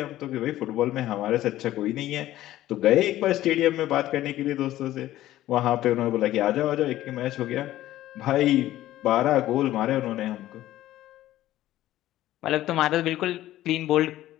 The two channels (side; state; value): right; quieter; 14.5 dB